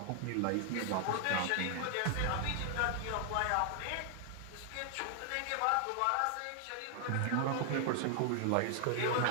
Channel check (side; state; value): both; different; correlation 0.00